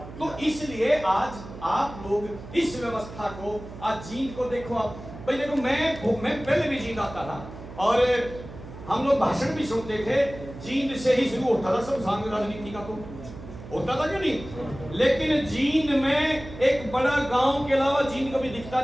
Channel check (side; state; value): right; noise; hum, 14 dB below the sound